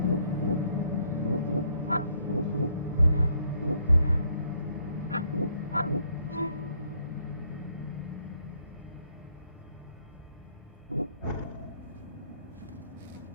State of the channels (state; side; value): inverted; both; correlation -0.68